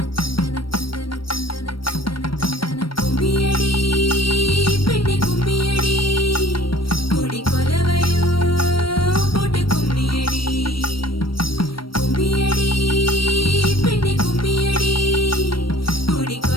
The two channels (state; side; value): late; right; 0.74 ms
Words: தந்தனனா கும்மியடி பெண்ணே கும்மியடி கொடி கொலவையோ போட்டு கும்மியடி கும்மியடி பெண்ணே கும்மியடி கொடி